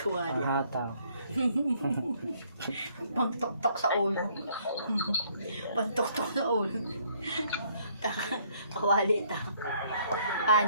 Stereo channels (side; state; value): both; inverted; correlation -0.65